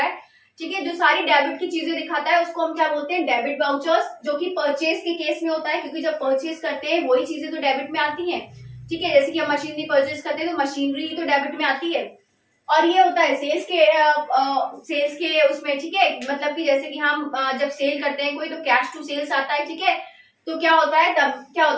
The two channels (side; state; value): both; identical; correlation 1.00